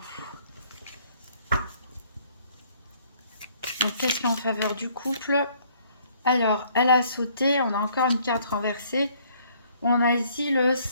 Donc qu'est-ce qui est en faveur du couple? Alors, elle a sauté, on a encore une carte renversée. On a ici le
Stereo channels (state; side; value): inverted; both; correlation -0.62